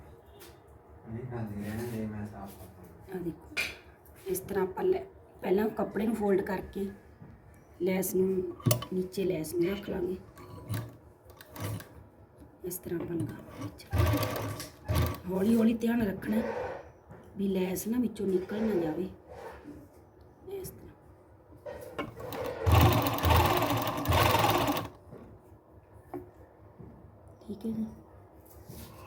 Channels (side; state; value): both; identical; correlation 1.00